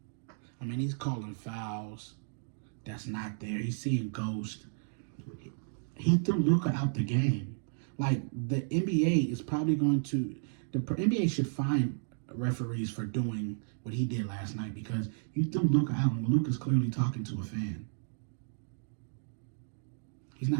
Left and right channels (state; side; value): silent; left; digital silence